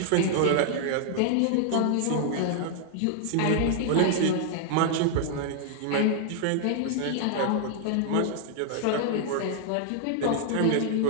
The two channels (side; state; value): both; different; correlation 0.00